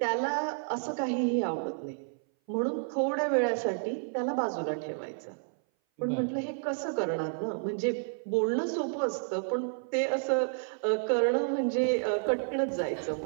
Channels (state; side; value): silent; left; 57 dB below the other